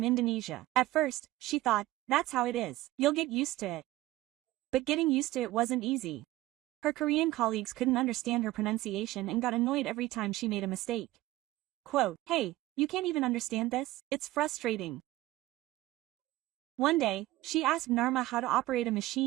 Indonesia. At first, she thought, that's how it is. You'll get used to it. But getting used to it wasn't easy. Her Korean colleagues couldn't understand her pronunciation and got annoyed every time she made a mistake. Quote, "Hey, you can't even understand this? It's frustrating." One day, she asked Narma how to operate a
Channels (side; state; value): left; quieter; 17.1 dB